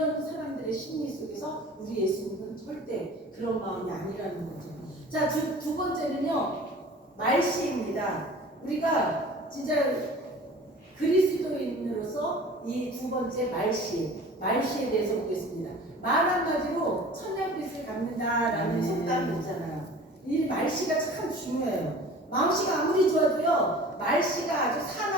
사람들의 심리 속에서 우리 예수님은 절대 그런 마음이 아니라는 거죠. 자, 두 번째는요, 말씨입니다. 우리가 진짜 그리스도인으로서 이 두 번째 말씨에 대해서 보겠습니다. 말 한마디로 천냥빚을 갚는다라는 속담이 있잖아요. 이 말씨가 참 중요해요. 마음씨가 아무리 좋아도요, 말씨가 아주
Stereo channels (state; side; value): normal; both; correlation 0.43